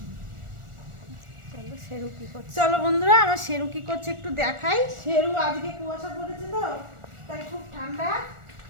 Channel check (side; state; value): left; late; 1.4 ms